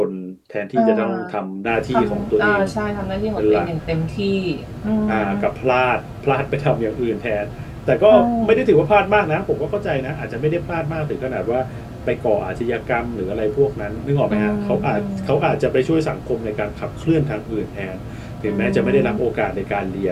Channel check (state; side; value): identical; both; correlation 1.00